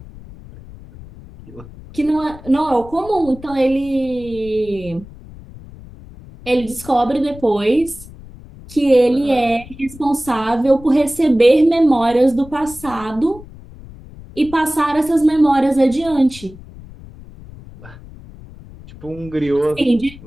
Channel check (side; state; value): left; noise; rumble, 18 dB below the sound